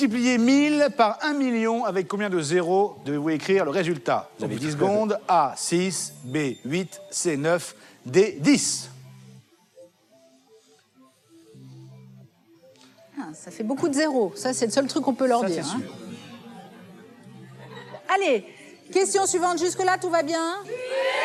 1000 par 1 million, avec combien de zéros devez-vous écrire le résultat? Vous avez 10 secondes. A, 6, B, 8, C, 9, D, 10. Ah, ça fait beaucoup de zéros. Ça, c'est le seul truc qu'on peut leur Ça, dire. c'est hein. sûr. Allez, question suivante. Jusque-là, tout va bien?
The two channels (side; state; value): both; identical; correlation 1.00